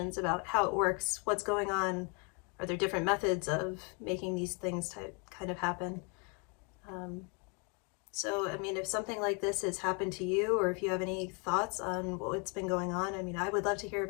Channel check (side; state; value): right; quieter; 34.7 dB